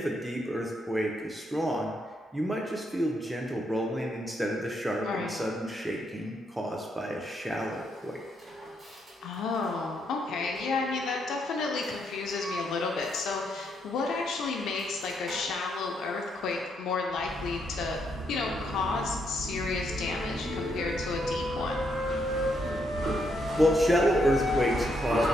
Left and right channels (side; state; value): both; normal; correlation 0.76